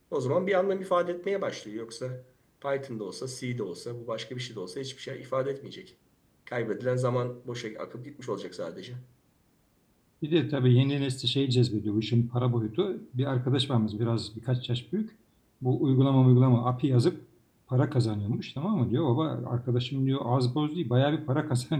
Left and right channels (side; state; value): both; identical; correlation 1.00